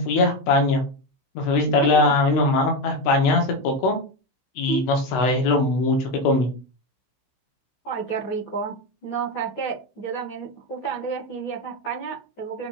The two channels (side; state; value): right; late; 16 ms